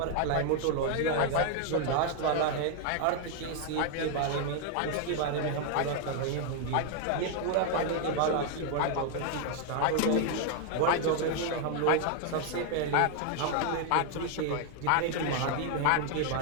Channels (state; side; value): different; both; correlation 0.00